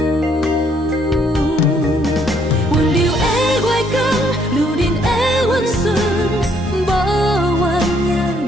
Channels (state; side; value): normal; both; correlation 0.68